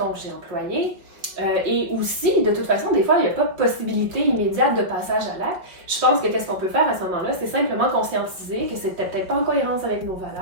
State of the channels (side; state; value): left; late; 5.2 ms